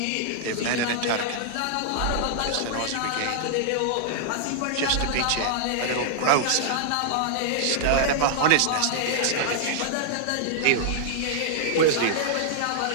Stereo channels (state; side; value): different; both; correlation -0.01